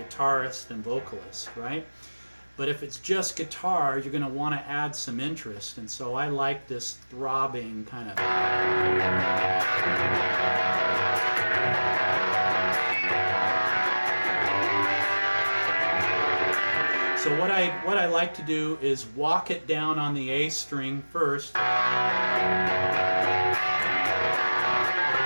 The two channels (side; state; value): both; inverted; correlation -1.00